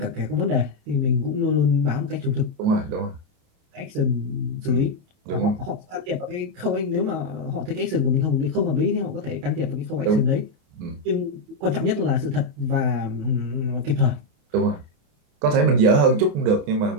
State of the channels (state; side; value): late; left; 28 ms